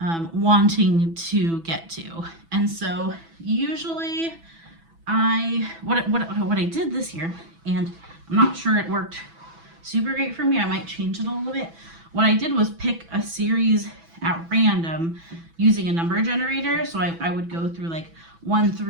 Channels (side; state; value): left; late; 6.0 ms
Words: wanting to get to. And so usually what I did this year, and I'm not sure it worked super great for me, I might change it a little bit. What I did was pick a series at random using a number generator. So I would go through like 1